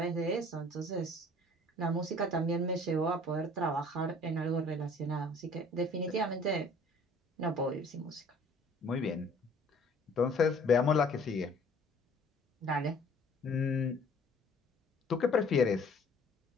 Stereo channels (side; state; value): both; normal; correlation 0.53